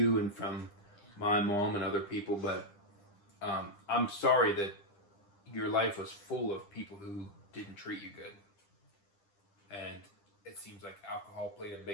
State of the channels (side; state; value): right; late; 10 ms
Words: and from my mom and other people, but I'm sorry that your life was full of people who didn't treat you good, and it seems like alcohol played a